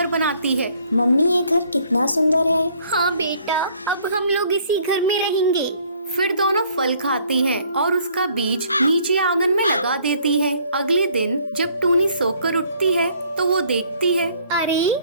बनाती है। मम्मी, ये घर कितना सुंदर है। हाँ बेटा, अब हम लोग इसी घर में रहेंगे। फिर दोनों फल खाती हैं और उसका बीज नीचे आंगन में लगा देती हैं। अगले दिन जब टूनी सोकर उठती है तो वो देखती है, अरे,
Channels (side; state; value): both; inverted; correlation -0.61